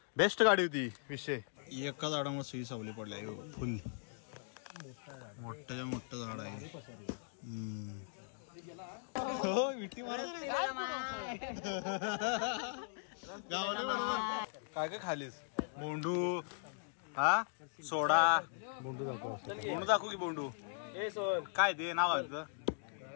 बेस्ट गाडी होती. विषय एका झाडामध्ये सुई सावली पडल्या फुल मोठं झाड आहे. हो विटी मार गावले बरोबर. काय काय खालीस? बोंडू हा सोडा बोंडू दाखवू की बोंडू काय ते नाव आहे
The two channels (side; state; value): right; silent; digital silence